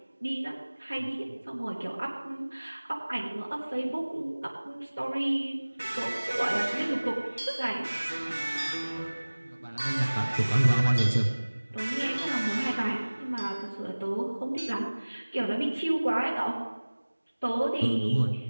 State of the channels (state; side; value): inverted; both; correlation -1.00